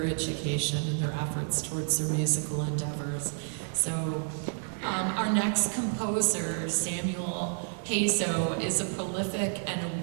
education and their efforts towards their musical endeavors. So our next composer, Samuel Hazo, is a prolific and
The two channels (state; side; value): silent; left; 58 dB below the other